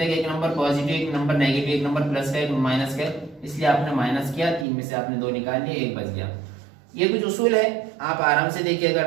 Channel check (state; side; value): drops out; left; at 4.7 s